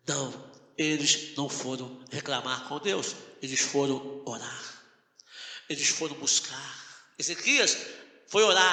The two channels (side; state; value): both; identical; correlation 1.00